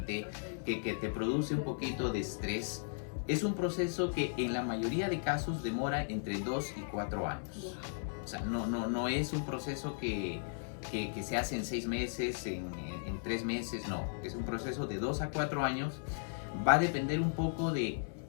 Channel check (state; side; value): silent; right; 54 dB below the other